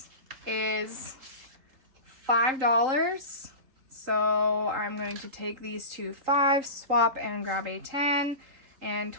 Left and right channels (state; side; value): late; left; 3.8 ms